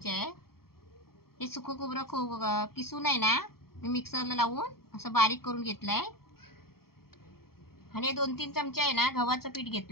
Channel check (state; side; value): late; right; 0.94 ms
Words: आहे. हे सुकं खोबरं किसून आहे ना, मी मिक्सरला लावून असं बारीक करून घेतलंय. आणि 2-3 चमचे आहे ना गव्हाचं पीठ